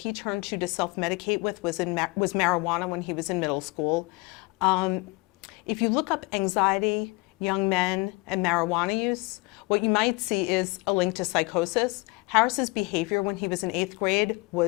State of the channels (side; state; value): right; quieter; 26.3 dB